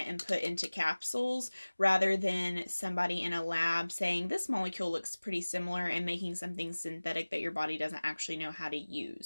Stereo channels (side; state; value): both; inverted; correlation -1.00